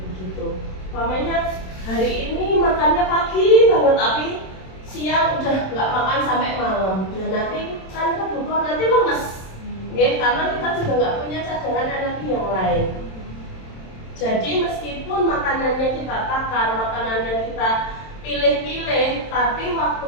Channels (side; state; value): right; late; 27 ms